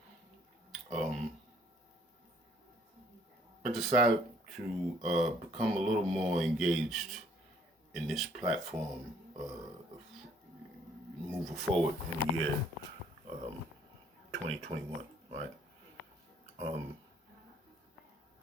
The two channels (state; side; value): normal; both; correlation 0.62